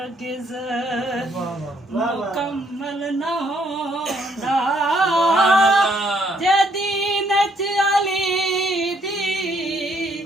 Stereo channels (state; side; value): normal; both; correlation 0.69